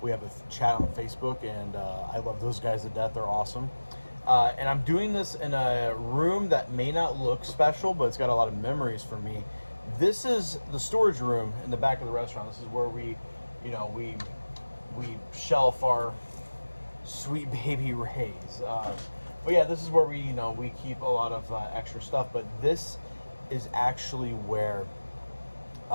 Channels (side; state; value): both; inverted; correlation -1.00